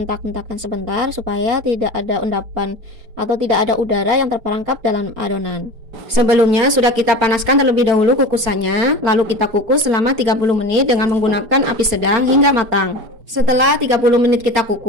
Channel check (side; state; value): left; late; 4.4 ms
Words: sebentar supaya tidak ada endapan atau tidak ada udara yang terperangkap dalam adonan. Sebelumnya sudah kita panaskan terlebih dahulu kukusannya, lalu kita kukus selama 30 menit dengan menggunakan api sedang hingga matang. Setelah 30 menit kita